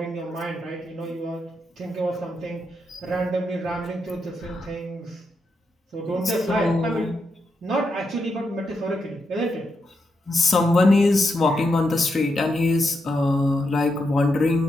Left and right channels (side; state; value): both; normal; correlation 0.83